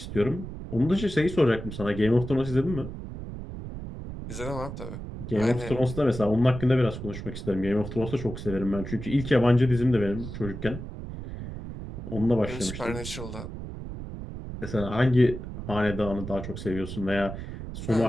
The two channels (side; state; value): right; noise; rumble, 9 dB below the sound